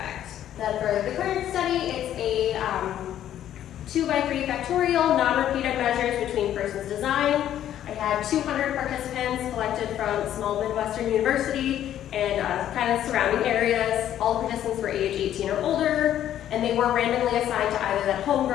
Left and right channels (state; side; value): quieter; right; 11.3 dB